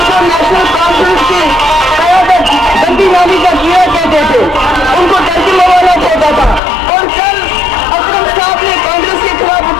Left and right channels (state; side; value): drops out; right; at 6.6 s